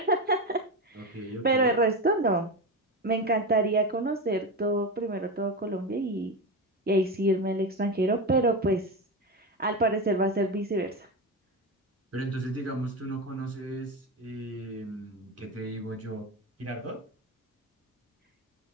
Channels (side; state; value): both; normal; correlation 0.18